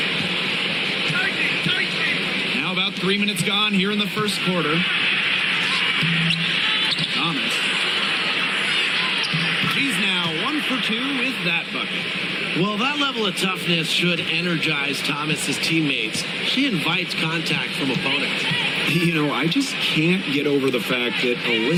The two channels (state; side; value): identical; both; correlation 1.00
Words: Now about 3 minutes gone here in the first quarter. Thomas. She's now 1 for 2 with that bucket. Well, that level of toughness should energize Thomas's teammates. She invites contact from opponents. I just can't get over the fact that